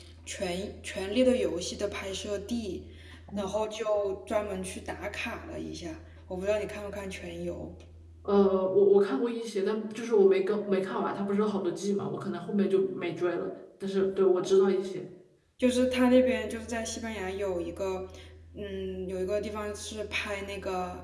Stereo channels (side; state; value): both; identical; correlation 1.00